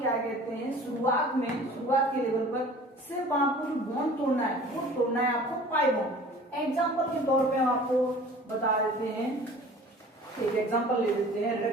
कहते हैं, शुरुआत के लेवल पर सिर्फ आपको जो बॉन्ड तोड़ना है वो तोड़ना है आपको पाई बॉन्ड। एग्जाम्पल के तौर पे हम आपको बता देते हैं, एक एग्जाम्पल ले लेते हैं।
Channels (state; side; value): normal; both; correlation 0.46